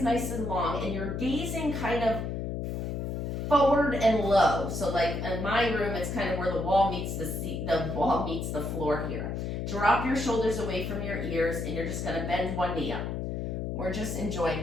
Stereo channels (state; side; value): noise; left; hum, 3 dB below the sound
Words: nice and long, and you're gazing kind of forward and low. So like in my room, it's kind of where the wall meets the wall meets the floor here. Drop your shoulders away from your ears, and you're just gonna bend one knee up. We're just